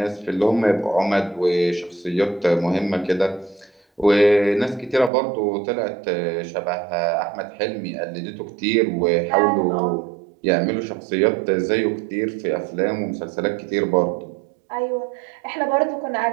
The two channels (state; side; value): drops out; left; at 5.1 s